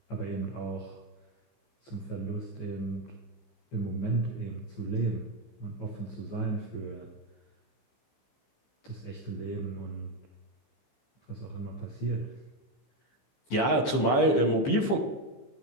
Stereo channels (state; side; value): late; right; 15 ms